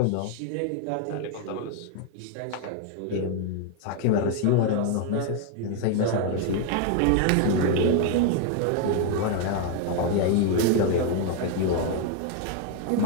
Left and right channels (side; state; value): both; different; correlation 0.01